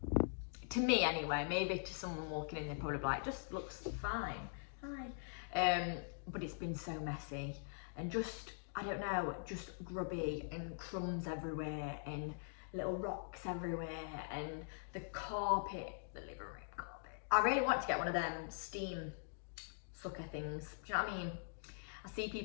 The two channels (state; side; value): silent; right; digital silence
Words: to me anyway, maybe to someone walking in, they're probably like, just looks fine. Hi. But it's been so messy and just, I don't know, just grubby and crumbs everywhere and little rocks everywhere and the carpet, the living room carpet. I really want to get one of them steam sucker things. Do you know what I mean? I see